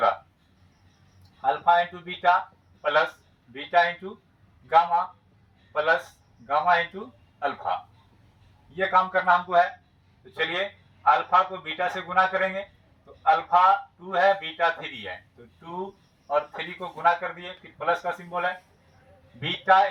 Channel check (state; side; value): identical; both; correlation 1.00